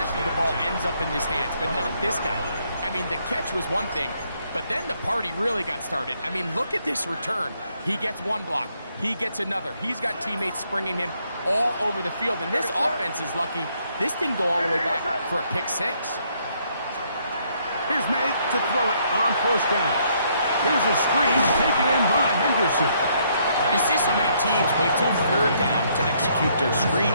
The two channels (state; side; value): inverted; both; correlation -0.70